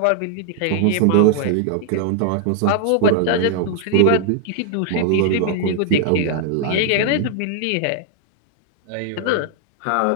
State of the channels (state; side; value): different; both; correlation -0.01